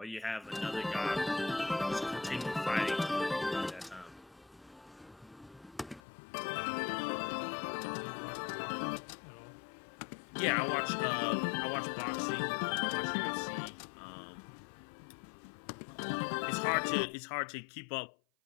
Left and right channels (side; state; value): right; drops out; at 6.0 s